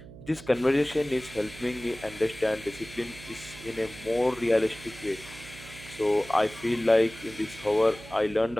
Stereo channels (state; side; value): noise; right; hum, 17 dB below the sound